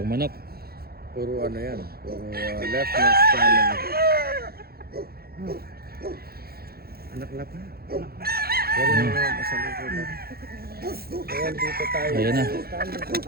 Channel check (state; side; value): late; left; 0.45 ms